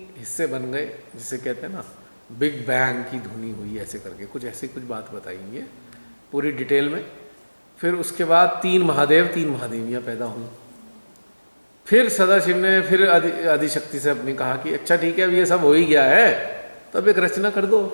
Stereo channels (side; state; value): both; inverted; correlation -1.00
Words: हिस्से बन गए, जिसे कहते हैं ना बिग बैंग की ध्वनि हुई, ऐसे करके कुछ ऐसी कुछ बात बताएंगे पूरी डिटेल में। फिर उसके बाद 3 महादेव 3 महादेवियाँ पैदा हुई। फिर सदाशिव ने फिर आदिशक्ति से अपनी कहा कि अच्छा ठीक है अब ये सब हो ही गया है, तो अब एक रचना कर दो